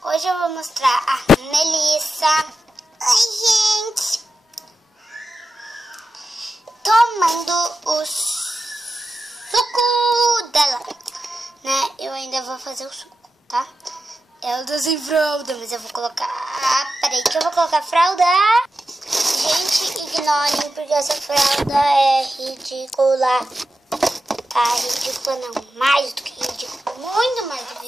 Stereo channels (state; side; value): normal; both; correlation 0.91